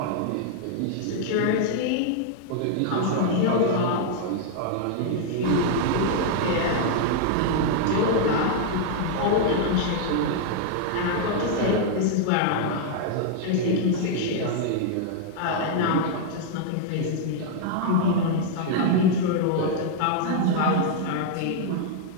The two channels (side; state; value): both; different; correlation -0.01